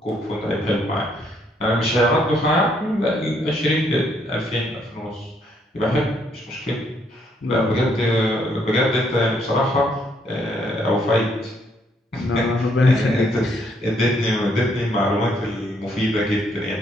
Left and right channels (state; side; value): normal; both; correlation 0.70